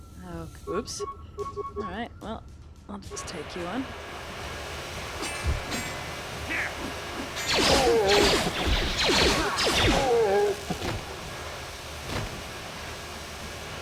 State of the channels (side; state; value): both; identical; correlation 1.00